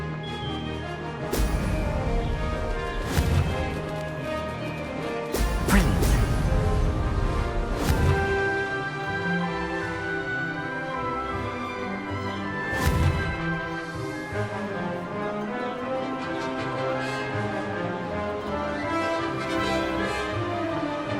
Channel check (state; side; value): identical; both; correlation 1.00